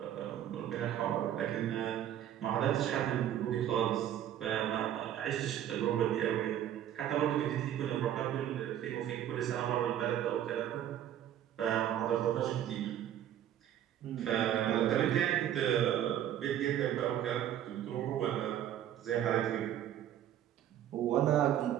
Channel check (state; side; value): quieter; left; 11.0 dB